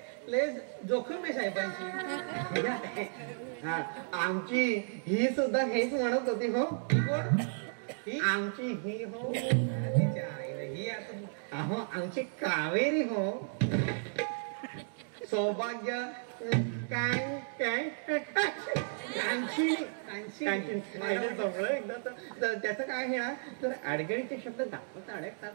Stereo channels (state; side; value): silent; left; digital silence